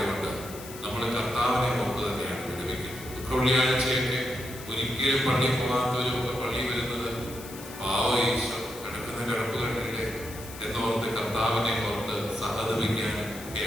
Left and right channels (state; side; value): noise; left; hiss, 15 dB below the sound